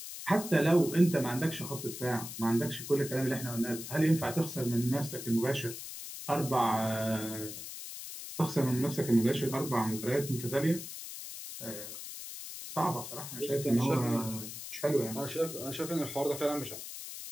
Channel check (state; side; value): noise; left; hiss, 10 dB below the sound